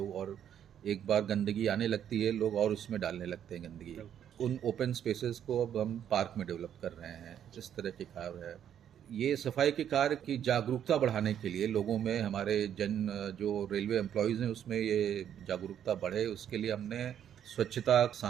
और एक बार गंदगी आने लगती है, लोग और उसमें डालने लगते हैं गंदगी। उन ओपन स्पेसेस को अब हम पार्क में डेवलप कर रहे हैं। इस तरह के कार्य है। ये सफाई के कार्य की जागरूकता बढ़ाने के लिए लोगों में, हमारे जो रेलवे एम्प्लॉयज़ हैं उसमें ये जागरूकता बढ़े, उसके लिए हमने स्वच्छता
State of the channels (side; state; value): left; quieter; 9.6 dB